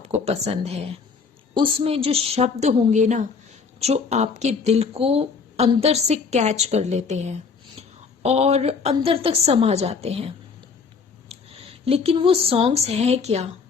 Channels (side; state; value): right; quieter; 5.3 dB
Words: पसंद है उसमें जो शब्द होंगे ना, जो आपके दिल को अंदर से कैच कर लेते हैं और अंदर तक समा जाते हैं। लेकिन वो सॉन्ग्स हैं क्या?